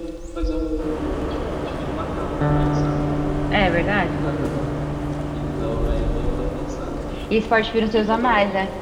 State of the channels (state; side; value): identical; both; correlation 1.00